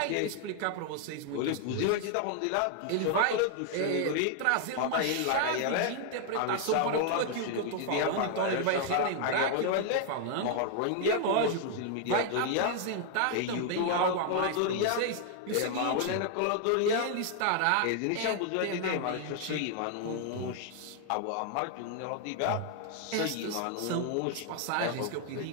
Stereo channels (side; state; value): both; different; correlation 0.00